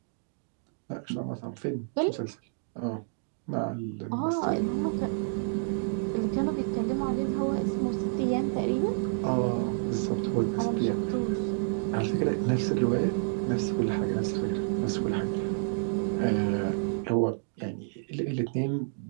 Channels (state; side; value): silent; left; digital silence